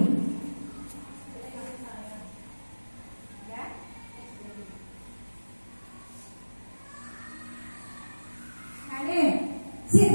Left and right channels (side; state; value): both; inverted; correlation -1.00